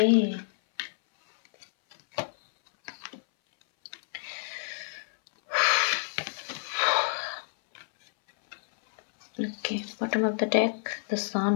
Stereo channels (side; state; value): right; silent; 59 dB below the other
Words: okay, bottom of the deck, the sun.